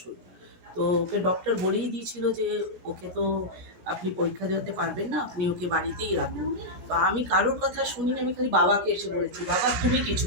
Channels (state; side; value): late; left; 17 ms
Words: তো ওকে ডক্টর বলেই দিয়েছিল যে ওকে তো আপনি পরীক্ষা দেওয়াতে পারবেন না, আপনি ওকে বাড়িতেই রাখুন। তো আমি কারোর কথা শুনিনি, আমি খালি বাবাকে এসে বলেছি, বাবা তুমি